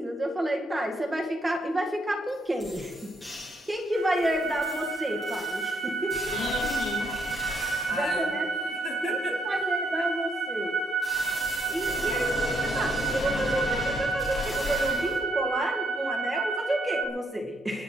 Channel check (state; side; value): normal; both; correlation 0.74